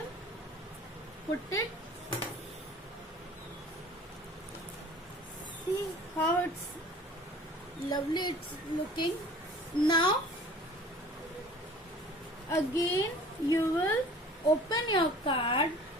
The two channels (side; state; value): both; normal; correlation 0.46